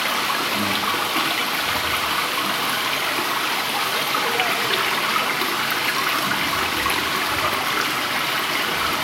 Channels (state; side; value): identical; both; correlation 1.00